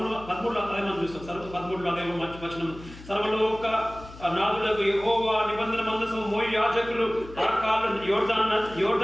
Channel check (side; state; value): left; noise; hum, 17 dB below the sound